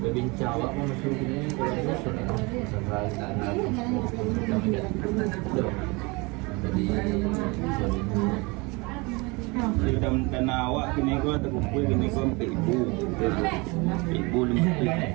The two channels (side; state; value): left; quieter; 26.7 dB